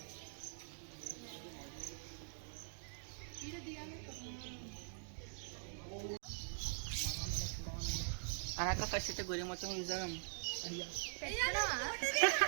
అనక ఫస్ట్ అయితే గురి మొత్తం చూసాం.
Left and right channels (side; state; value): left; silent; digital silence